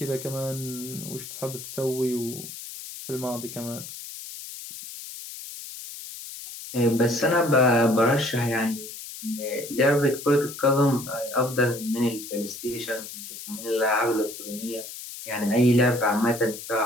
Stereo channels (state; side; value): noise; left; hiss, 11 dB below the sound